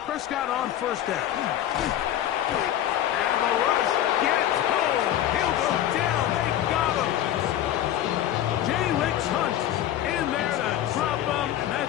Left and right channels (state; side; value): quieter; right; 11.8 dB